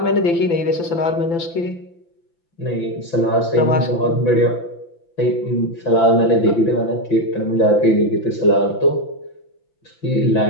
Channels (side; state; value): right; late; 5.9 ms